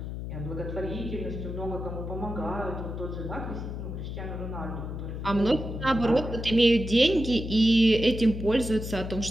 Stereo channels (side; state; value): left; noise; hum, 6 dB below the sound